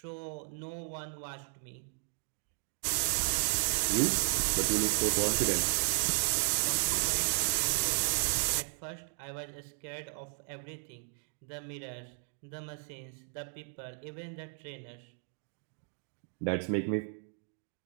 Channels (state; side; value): silent; left; 55 dB below the other